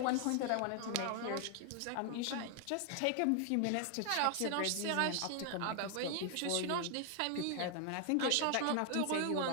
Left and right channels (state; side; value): different; both; correlation 0.00